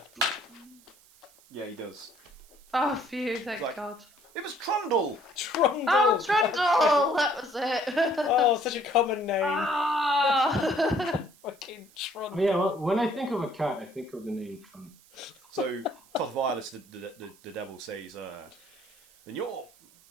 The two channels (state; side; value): noise; right; hiss, 27 dB below the sound